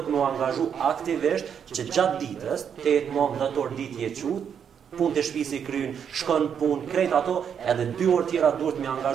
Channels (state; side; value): quieter; left; 7.8 dB